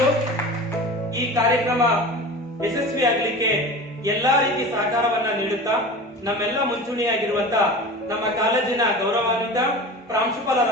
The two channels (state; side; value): normal; both; correlation 0.34